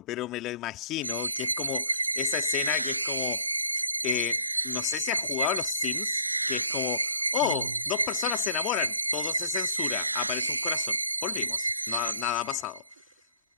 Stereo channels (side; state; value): both; inverted; correlation -0.55